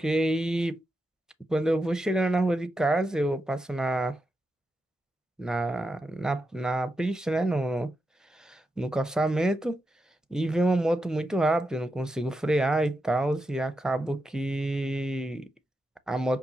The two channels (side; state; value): both; normal; correlation 0.87